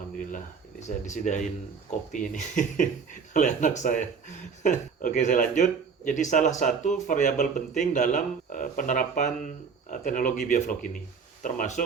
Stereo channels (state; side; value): quieter; left; 5.7 dB